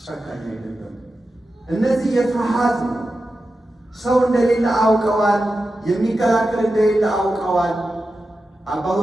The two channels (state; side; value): normal; both; correlation 0.92